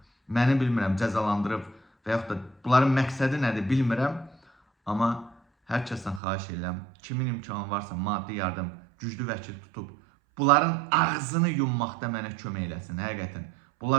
Məni bilmirəm, cəzalandırıb və yaxud da bunların məqsədi nədir bilmirəm. Amma hər kəsdən xahiş edirəm, kimin imkanı varsa maddi yardım, güclü vəkil tutub, bunların ağzını yummaqda mənə kömək eləsin, həqiqətən.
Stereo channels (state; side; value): drops out; left; at 6.2 s